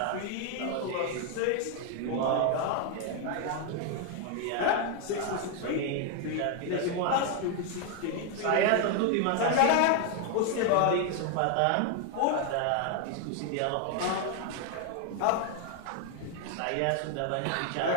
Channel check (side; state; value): both; different; correlation 0.01